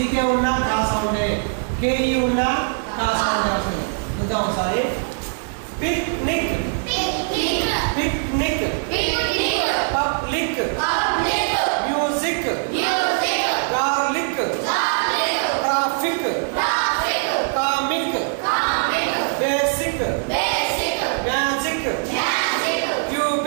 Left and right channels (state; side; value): silent; left; 65 dB below the other